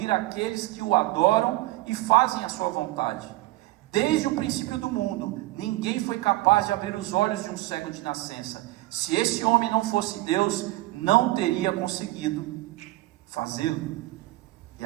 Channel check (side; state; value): left; quieter; 18.5 dB